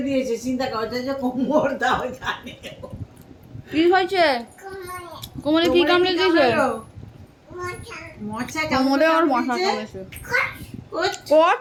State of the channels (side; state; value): both; identical; correlation 1.00